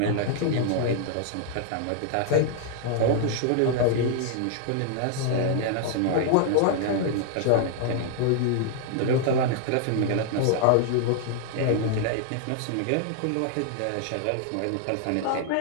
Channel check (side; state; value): both; different; correlation 0.00